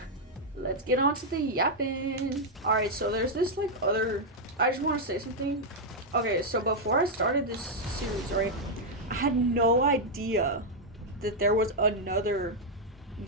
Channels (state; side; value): normal; both; correlation -0.02